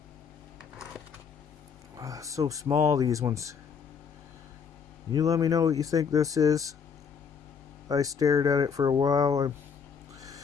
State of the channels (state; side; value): quieter; right; 6.4 dB